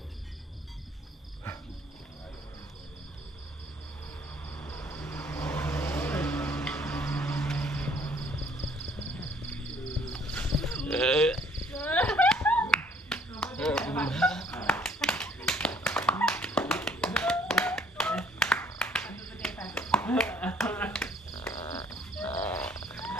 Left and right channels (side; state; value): both; normal; correlation 0.61